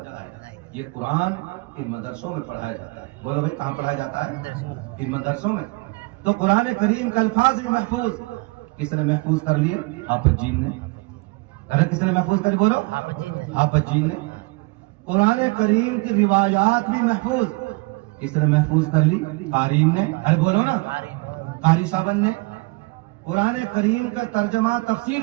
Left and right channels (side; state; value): left; quieter; 26.0 dB